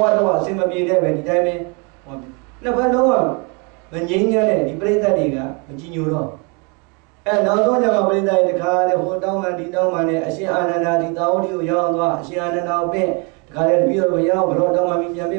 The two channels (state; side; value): quieter; left; 32.7 dB